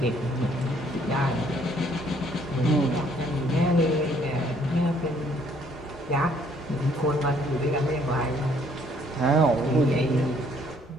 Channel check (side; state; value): both; normal; correlation 0.64